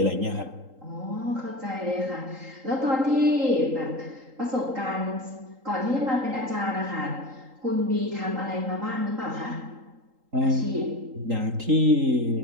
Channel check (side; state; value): left; late; 3.8 ms